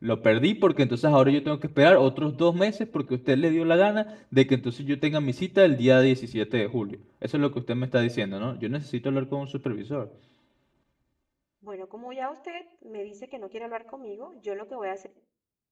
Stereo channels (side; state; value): both; identical; correlation 1.00